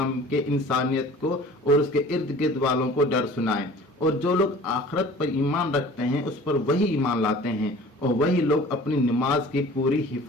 کے انسانیت کو اور اس کے ارد گرد والوں کو ڈر سنائیں، اور جو لوگ آخرت پر ایمان رکھتے ہیں اس پر وہی ایمان لاتے ہیں، اور وہی لوگ اپنی نماز کی پوری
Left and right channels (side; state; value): both; normal; correlation 0.45